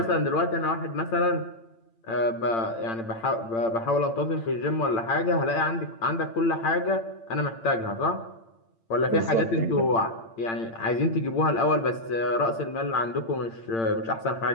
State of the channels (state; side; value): late; right; 8.8 ms